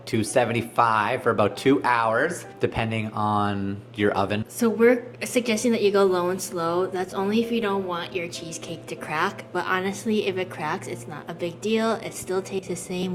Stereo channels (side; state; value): both; identical; correlation 1.00